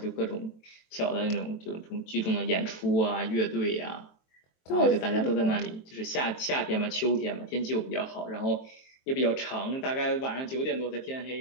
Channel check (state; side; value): late; right; 23 ms